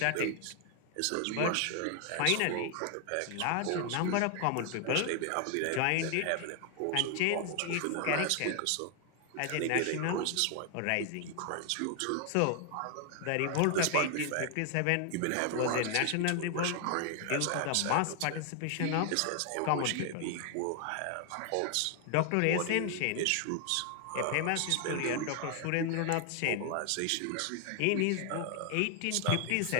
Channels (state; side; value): different; both; correlation 0.00